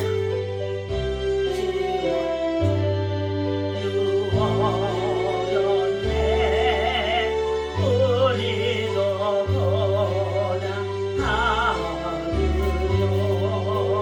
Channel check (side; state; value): both; identical; correlation 1.00